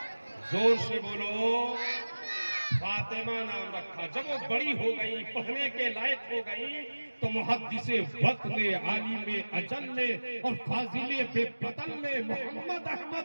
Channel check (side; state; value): both; inverted; correlation -1.00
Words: زور سے بولو. فاطمہ نام رکھا. جب وہ بڑی ہو گئی، پڑھنے کے لائق ہو گئی، تو محدث وقت نے، عالم اجل نے اور فاضل بے بدل نے، محمد